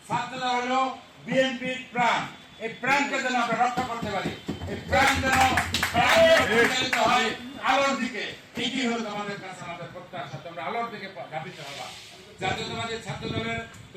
ছাত্রদল হলো বিএনপির প্রাণ। এই প্রাণকে যেন আমরা রক্ষা করতে পারি, এই প্রাণ যেন পরিচালিত হয় আলোর দিকে। এটি হলো তোমাদের কাছে আমাদের প্রত্যাশা, তোমরা আলোর দিকে ধাবিত হবা। জাতীয়তাবাদী ছাত্র দলের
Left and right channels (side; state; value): both; identical; correlation 1.00